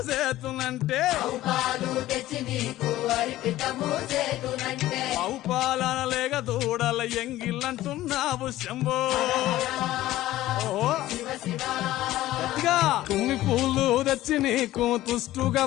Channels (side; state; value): right; quieter; 15.3 dB